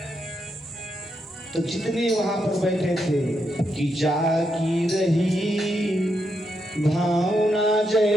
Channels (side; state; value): both; normal; correlation 0.82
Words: तो जितने वहां पर बैठे थे कि जाकी रही भावना